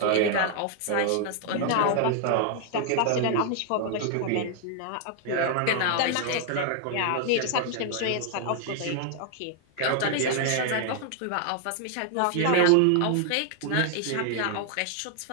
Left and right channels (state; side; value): different; both; correlation 0.00